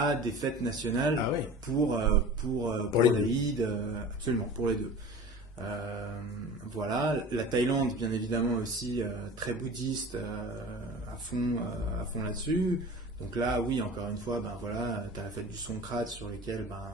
des fêtes nationales Ah ouais. pour les l'Aïd, absolument, pour les deux. Voilà, la Thaïlande, bien évidemment, aussi très bouddhiste, à fond là-dessus. Donc là, oui, encore une fois, ben voilà, tu as la fête du Songkran sur lequel, ben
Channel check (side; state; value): both; normal; correlation 0.38